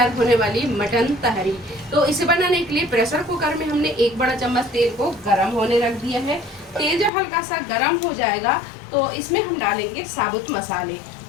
होने वाली मटन तहरी। तो इसे बनाने के लिए प्रेशर कुकर में हमने 1 बड़ा चम्मच तेल को गर्म होने रख दिया है। तेल जब हल्का सा गर्म हो जाएगा तो इसमें हम डालेंगे साबुत मसाले।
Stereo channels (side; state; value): right; drops out; at 7.1 s